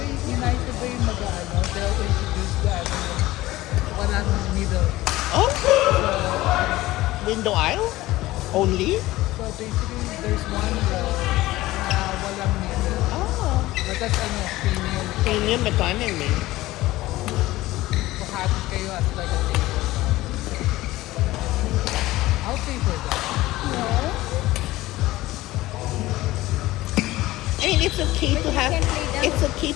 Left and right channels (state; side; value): quieter; right; 17.5 dB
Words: United ba yung mag-ano? They'll introduce the ano, walang middle. Oh! Window aisle? Only? So basically, there's one row na walang middle. Oh. Batas ano, premium. Premium economy. Pakatid kayo as like a table. I'll pay for that. I mean, it's okay to have, it's okay